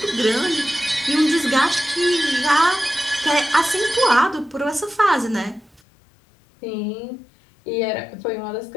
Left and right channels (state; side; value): drops out; right; at 5.8 s